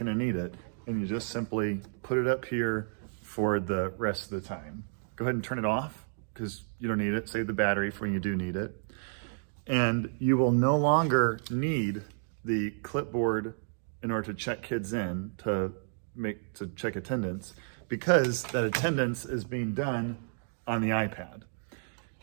need it, and you just simply put it up here for the rest of the time. Go ahead and turn it off, because you don't need it. Save the battery for when you do need it. And you will no longer need the clipboard in order to check kids in to check attendance, because that attendance is being done on the iPad.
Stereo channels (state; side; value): silent; left; digital silence